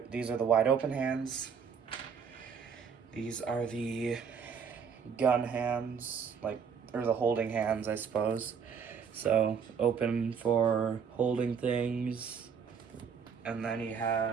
are the wide open hands. These are the gun hands, or the holding hands, I suppose. So open for holding things. And then he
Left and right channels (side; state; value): left; quieter; 6.6 dB